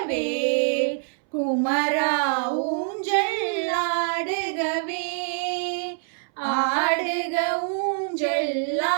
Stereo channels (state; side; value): silent; left; 62 dB below the other